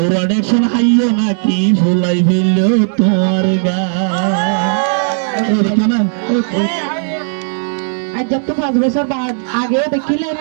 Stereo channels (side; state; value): left; silent; digital silence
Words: ওরা দেখছেন হাইও নাকি ফুলাই ফেলল তোমার গা কেন আজ যত 5 বছর বাদ আগে দেখিলেন